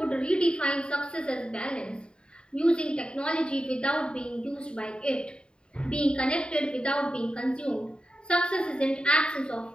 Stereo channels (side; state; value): right; late; 0.051 ms